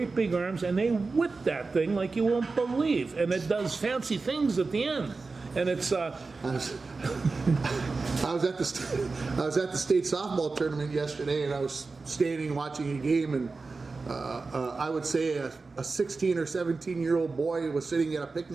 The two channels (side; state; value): left; quieter; 4.0 dB